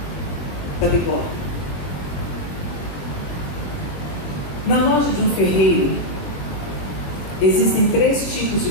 da bigorna. Na loja de um ferreiro existem 3 tipos de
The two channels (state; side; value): late; right; 20 ms